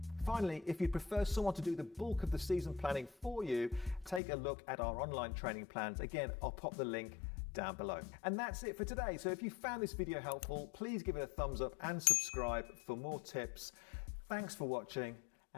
Finally, if you prefer someone to do the bulk of the season planning for you, take a look at our online training plans. Again, I'll pop the link down below. And that's it for today. So if you found this video helpful, please give it a thumbs up and subscribe for more tips. Thanks for watching,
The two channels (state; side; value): drops out; right; at 4.2 s